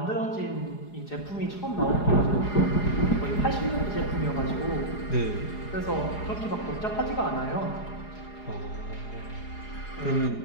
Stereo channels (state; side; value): late; right; 4.8 ms